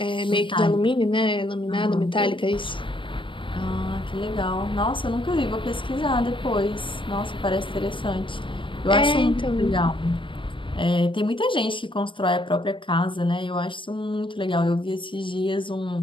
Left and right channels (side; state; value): right; late; 0.24 ms